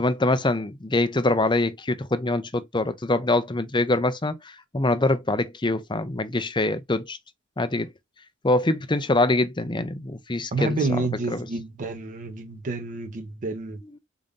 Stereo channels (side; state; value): both; normal; correlation 0.55